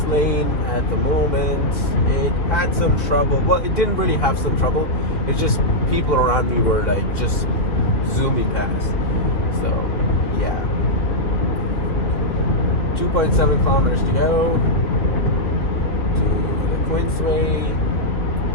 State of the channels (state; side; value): late; right; 2.9 ms